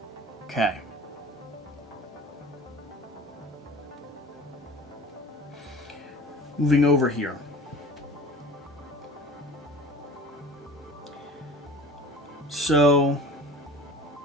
Okay. Moving over here. So,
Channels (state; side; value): normal; both; correlation 0.41